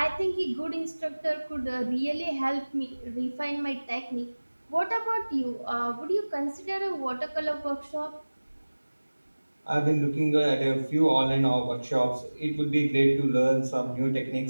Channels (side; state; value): both; inverted; correlation -1.00